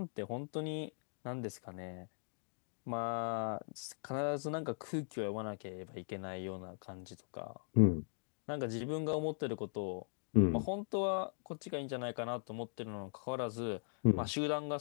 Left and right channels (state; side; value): silent; right; digital silence